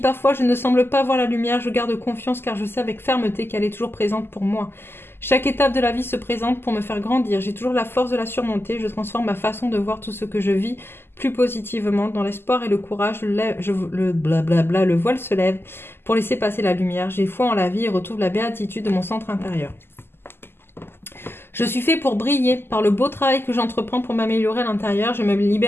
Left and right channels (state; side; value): late; right; 0.11 ms